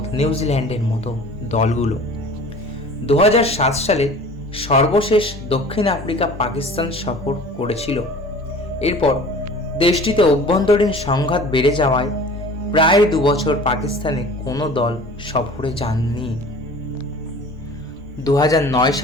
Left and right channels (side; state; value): both; normal; correlation 0.43